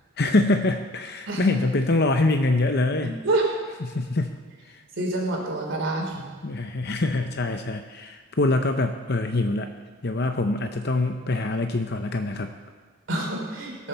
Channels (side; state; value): both; normal; correlation 0.53